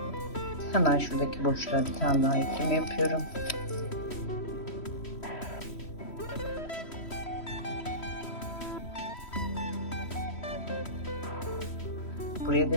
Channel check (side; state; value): right; late; 3.1 ms